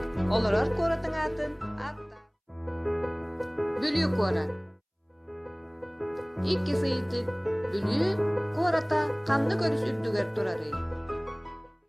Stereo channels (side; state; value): both; identical; correlation 1.00